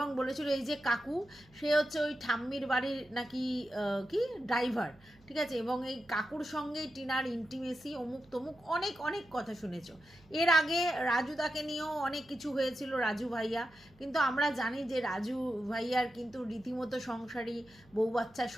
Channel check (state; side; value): noise; right; hum, 28 dB below the sound